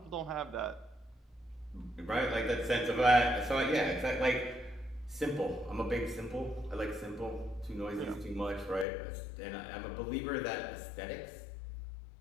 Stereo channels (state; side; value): drops out; right; at 8.8 s